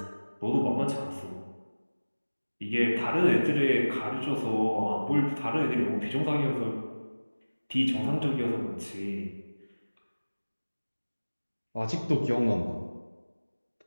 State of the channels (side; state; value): both; inverted; correlation -1.00